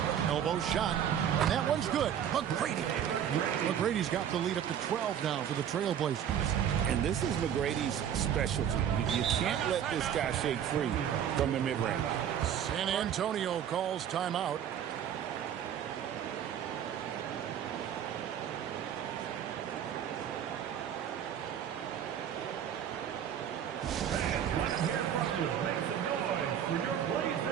Elbow shot. And that one's good. McGrady's got the lead up to 12 now for the Trailblazers. And this is McGrady's specialty. You can't let this guy shake free from the mid-range. San Antonio calls timeout. Let's hear from you. Make some noise for your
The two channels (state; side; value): quieter; left; 9.3 dB